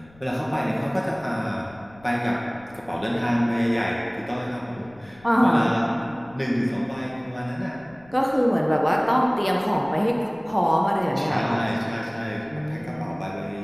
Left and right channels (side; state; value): left; noise; rumble, 26 dB below the sound